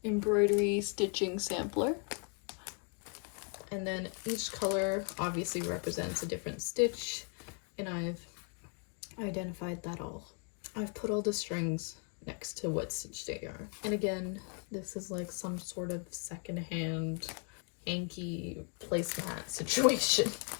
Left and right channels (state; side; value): quieter; right; 39.7 dB